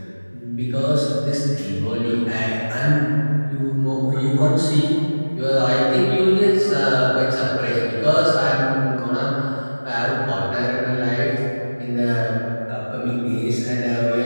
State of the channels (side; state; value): both; inverted; correlation -1.00